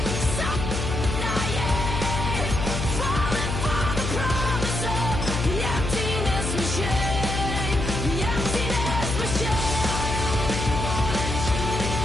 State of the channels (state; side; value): noise; left; hum, 3 dB below the sound